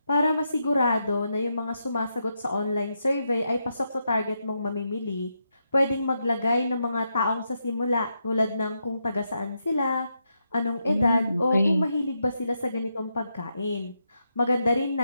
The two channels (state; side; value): inverted; both; correlation -0.83